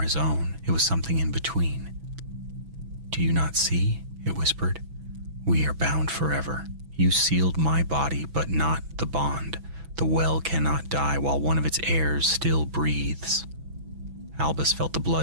his own. It was something in between. "Do you not see?" it whispered. "We are bound forever. You sealed my body, but not the bond. The well cannot die while one of its heirs still breathes." Albus felt the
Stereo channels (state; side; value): late; left; 6.1 ms